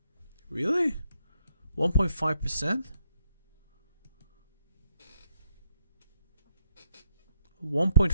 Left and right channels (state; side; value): inverted; both; correlation -0.76